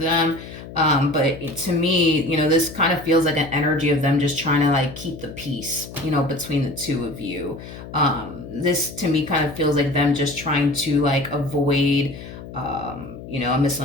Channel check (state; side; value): noise; left; hum, 13 dB below the sound